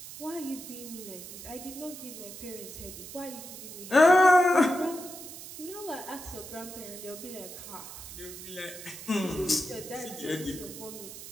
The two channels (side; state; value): right; noise; hiss, 12 dB below the sound